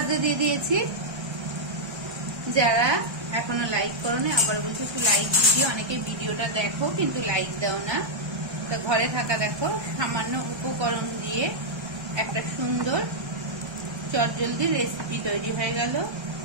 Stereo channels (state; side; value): late; left; 1.3 ms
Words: দিয়ে দিয়েছি। যারা এখনো লাইক করোনি আবার বলছি একটু লাইক দিও, অনেকে ভিডিওটা দেখো কিন্তু লাইক দাও না। তো ঘরে থাকা দেখো সামান্য উপকরণ দিয়ে একটা সুন্দর চটজলদি রেসিপি তৈরি হয়ে গেল।